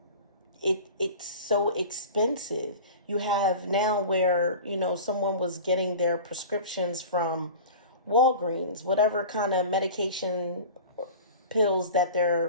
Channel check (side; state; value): both; inverted; correlation -0.36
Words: it's so expensive. You have now where, someone was getting their prescriptions from Walgreens, whatever kind of medication pills that